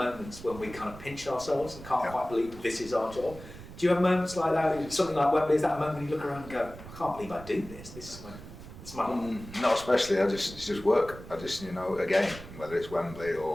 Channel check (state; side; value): noise; right; rumble, 15 dB below the sound